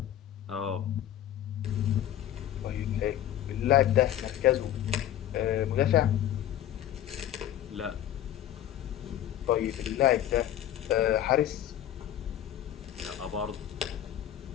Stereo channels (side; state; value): right; quieter; 11.6 dB